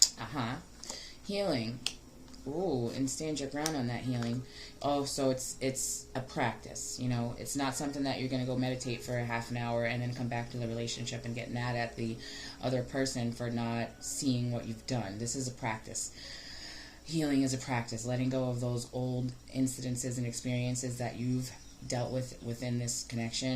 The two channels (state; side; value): identical; both; correlation 1.00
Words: healing. Ooh, and stand your ground on that healing. Oh, so it's a practice, you know. It's not something that you're going to go meditate for a half an hour and then come back to the relationship and get mad at the other person for not seeing what you've done. This is a practice. Healing is a practice. Letting go of those old incidences and experiences that you've dealt with within this